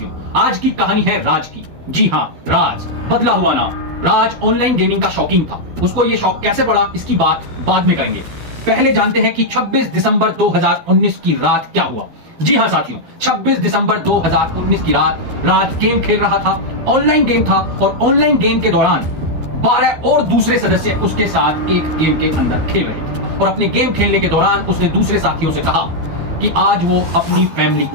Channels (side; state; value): left; late; 12 ms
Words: आज की कहानी है राज की। जी हाँ, राज, बदला हुआ नाम। राज ऑनलाइन गेमिंग का शौकीन था। उसको ये शौक कैसे पड़ा, इसकी बात बाद में करेंगे। पहले जानते हैं कि 26 दिसंबर 2019 की रात क्या हुआ। जी हाँ साथियों, 26 दिसंबर 2019 की रात राज गेम खेल रहा था। ऑनलाइन गेम था और ऑनलाइन गेम के दौरान 12 और दूसरे सदस्य उसके साथ एक गेम के अंदर खेल रहे थे और अपने गेम खेलने के दौरान उसने दूसरे साथियों से कहा कि आज वो अपनी फैमिली